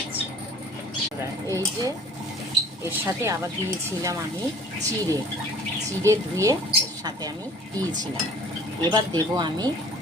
এই যে এর সাথে আবার দিয়েছিলাম আমি চিড়ে চিড়ে ধুয়ে এর সাথে আমি দিয়েছিলাম। এবার দেব আমি,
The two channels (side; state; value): both; normal; correlation 0.49